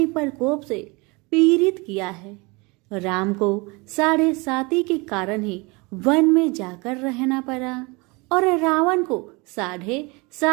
प्रकोप से पीड़ित किया है। राम को 7.5 के कारण ही वन में जाकर रहना पड़ा और रावण को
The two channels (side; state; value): left; quieter; 27.0 dB